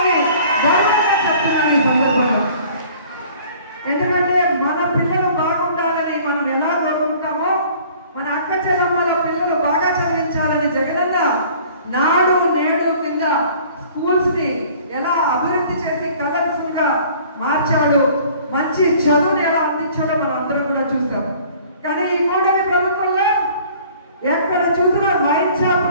గౌరవంగా చెప్తున్నాను ఈ సందర్భంగా. ఎందుకంటే మన పిల్లలు బాగుండాలని మనం ఎలా కోరుకుంటామో మన అక్క చెల్లమ్మల పిల్లలు బాగా చదివించాలని జగనన్న నాడు నేడు కింద స్కూల్స్ ని ఎలా అభివృద్ధి చేసి కలర్ఫుల్ గా మార్చాడు, మంచి చదువుని ఎలా అందించాడో మనం అందరూ కూడా చూసాం. కానీ ఈ కూటమి ప్రభుత్వంలో ఎక్కడ చూసినా వైన్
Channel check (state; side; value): inverted; both; correlation -0.51